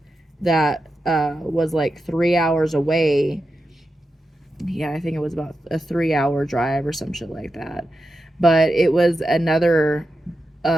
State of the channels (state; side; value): normal; both; correlation 0.89